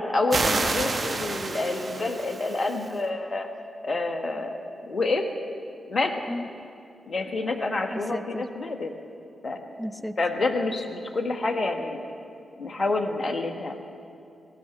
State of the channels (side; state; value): both; normal; correlation 0.87